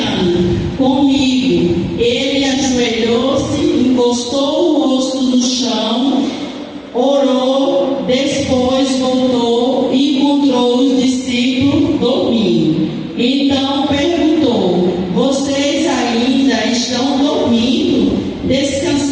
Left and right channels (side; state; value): both; identical; correlation 1.00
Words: comigo. Ele ajoelhou-se, encostou o rosto no chão, orou, depois voltou e encontrou os discípulos dormindo. Então perguntou: vocês ainda estão dormindo,